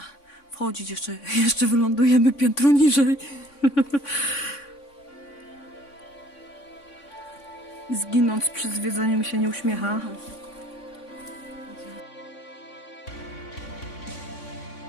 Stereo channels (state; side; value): late; right; 3.6 ms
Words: wchodzić, jeszcze wylądujemy piętro niżej. Zginąc przy zwiedzaniu mi się nie uśmiecha.